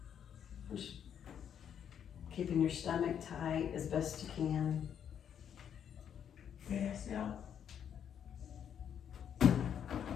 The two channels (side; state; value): right; quieter; 8.7 dB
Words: Just keeping your stomach tight as best you can. Yes, yeah.